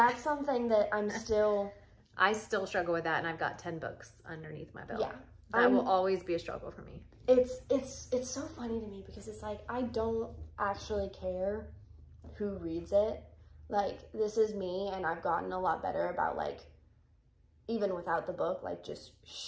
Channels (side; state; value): both; identical; correlation 1.00